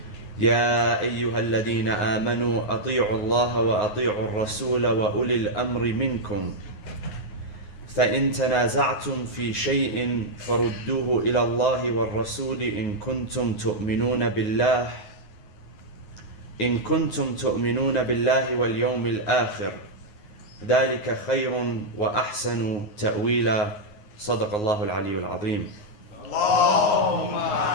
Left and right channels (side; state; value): right; late; 9.5 ms